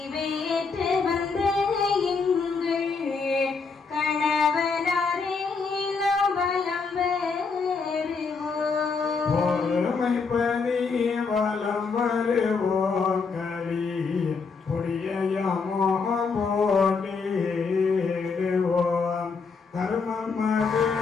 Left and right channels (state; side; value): quieter; right; 4.9 dB